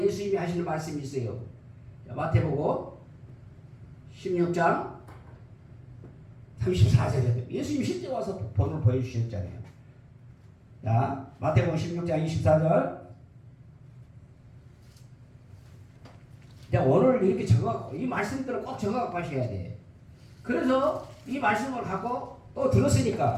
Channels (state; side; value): identical; both; correlation 1.00